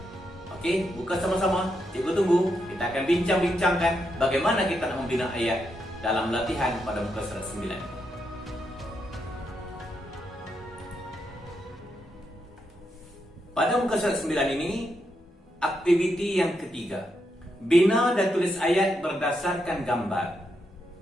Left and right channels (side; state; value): both; normal; correlation 0.82